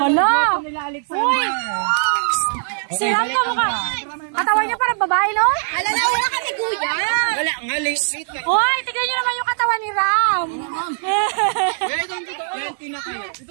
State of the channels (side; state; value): left; silent; digital silence